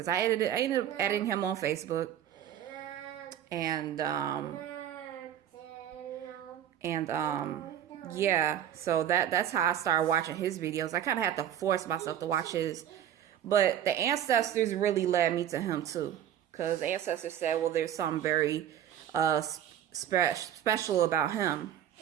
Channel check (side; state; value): left; quieter; 10.5 dB